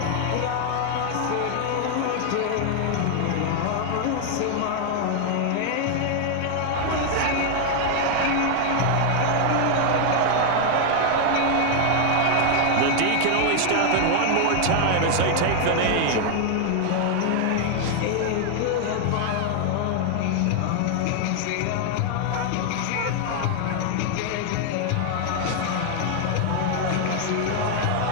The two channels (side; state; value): both; different; correlation 0.00